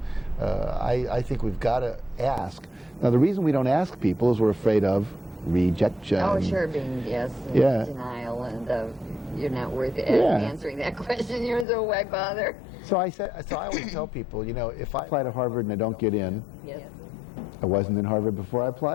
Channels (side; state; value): right; drops out; at 11.7 s